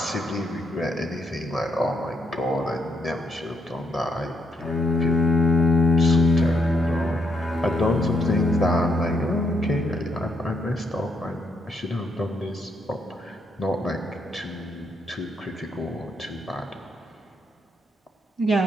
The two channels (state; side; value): normal; both; correlation 0.76